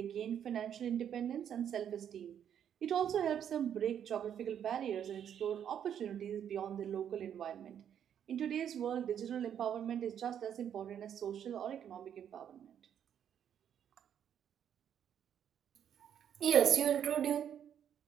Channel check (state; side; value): quieter; left; 9.1 dB